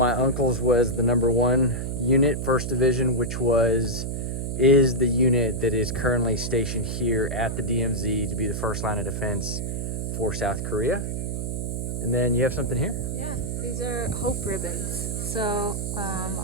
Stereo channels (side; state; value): right; noise; hum, 3 dB below the sound